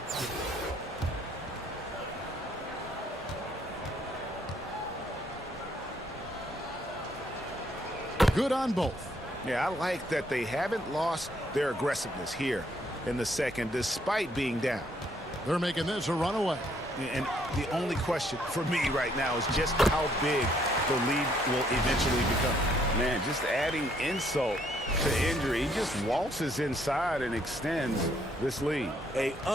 Good on both. Yeah, I like that they haven't lost their aggressiveness here in the second, despite being down. They're making this a runaway. And the only question for me right now is just how big the lead will eventually become. Man, just adding insult to injury, he just waltzes inside and extends this lead. An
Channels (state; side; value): normal; both; correlation 0.68